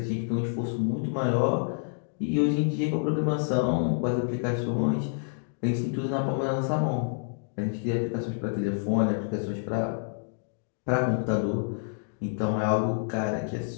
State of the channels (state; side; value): silent; right; digital silence